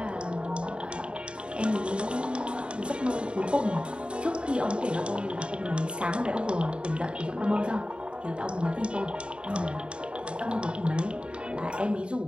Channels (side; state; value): left; late; 0.054 ms